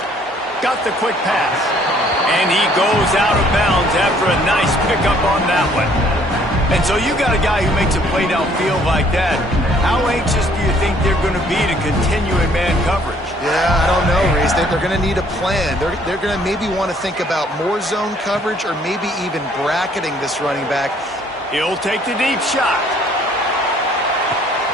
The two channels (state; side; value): normal; both; correlation 0.61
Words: Got the quick pass. And he goes out of bounds after a nice pickup on that one. And so you got a guy who makes a play downfield like that. How anxious do you think they're going to be to continue in man coverage? Yeah, I don't know, Reese. They're going to need a plan. They're going to maybe want to think about more zone coverage or maybe even bracketing this running back. He'll take the deep shot.